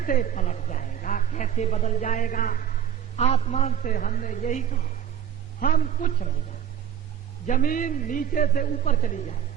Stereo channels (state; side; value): quieter; left; 9.3 dB